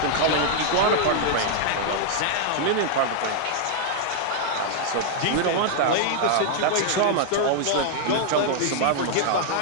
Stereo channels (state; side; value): different; both; correlation -0.01